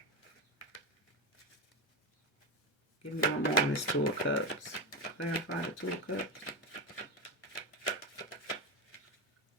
Give me one more on this Two of Cups. Clarify the Two of Cups.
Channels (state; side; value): normal; both; correlation 0.15